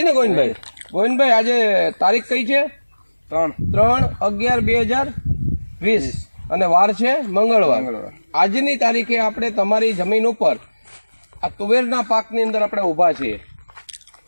ને ગોવિંદભાઈ? ગોવિંદભાઈ આજે તારીખ કઈ છે? 3/11/2020 અને વાર છે મંગળવાર. આજની તારીખે આપણે તમારી જમીન ઉપર આ તુવેરના પાકની અંદર આપણે ઊભા છીએ.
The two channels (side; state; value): both; inverted; correlation -1.00